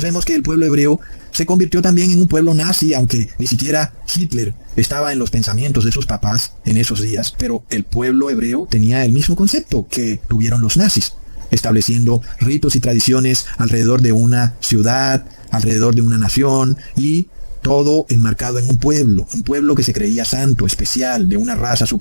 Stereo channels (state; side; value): inverted; both; correlation -1.00